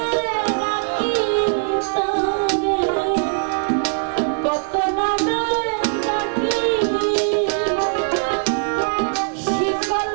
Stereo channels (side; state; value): left; silent; digital silence